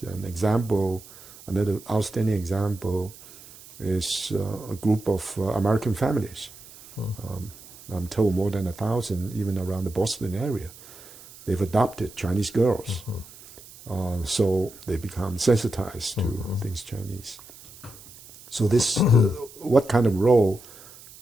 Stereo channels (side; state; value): right; noise; hiss, 20 dB below the sound